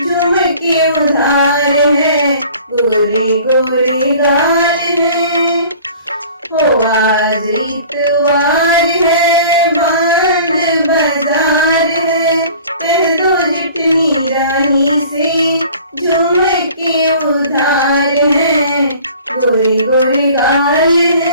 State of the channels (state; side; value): inverted; both; correlation -0.47